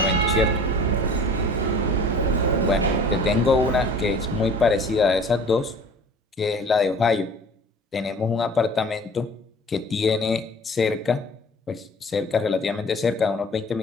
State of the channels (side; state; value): both; normal; correlation 0.46